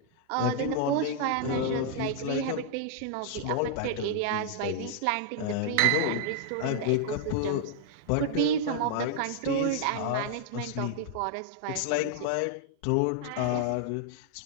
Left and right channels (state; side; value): different; both; correlation 0.00